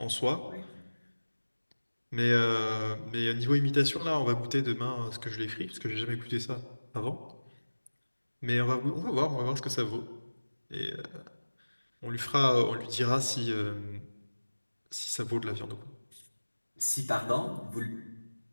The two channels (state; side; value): inverted; both; correlation -1.00